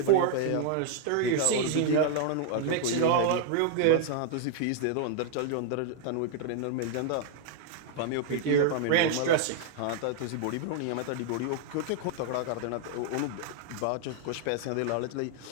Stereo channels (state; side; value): different; both; correlation 0.00